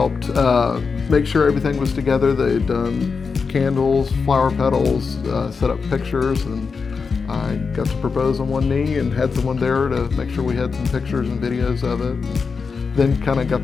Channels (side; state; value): right; quieter; 5.1 dB